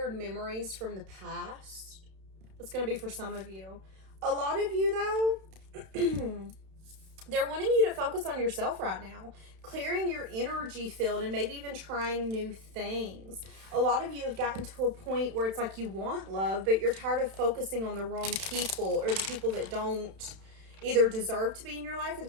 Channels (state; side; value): late; left; 31 ms